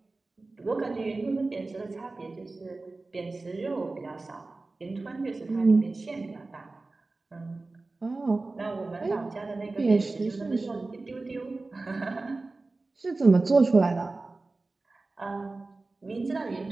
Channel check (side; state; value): left; quieter; 3.4 dB